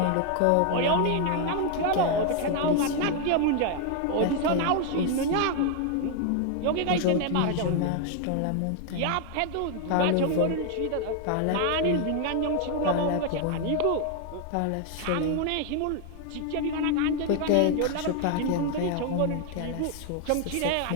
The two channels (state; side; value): different; both; correlation 0.00